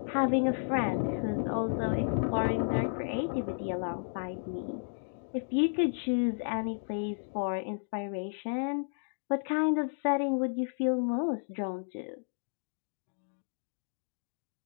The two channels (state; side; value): silent; right; digital silence